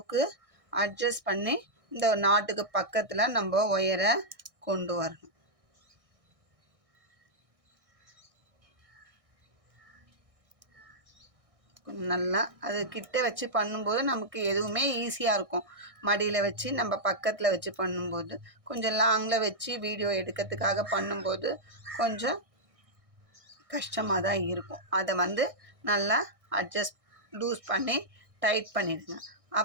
அட்ஜஸ்ட் பண்ணி இந்த நாட்டுக்கு பக்கத்தில் நம்ம ஒயரை கொண்டு வரணும். நல்லா அது கிட்ட வச்சு பண்ணும்போது நமக்கு எதுவுமே ஈஸியாக இருக்கும். மடியில் வச்சு நம்ம பக்கத்தில் வச்சு பண்ணும்போது, கொஞ்சம் லாங்கில் வச்சு வீடியோ எடுக்கிறதுக்காக பண்ணும்போது கொஞ்சம் கஷ்டமாக தான் இருக்கும். அதை வந்து நல்லா அட்ஜஸ்ட் லூஸ் பண்ணி டைட் பண்ணிடுங்க.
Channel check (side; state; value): left; late; 1.6 ms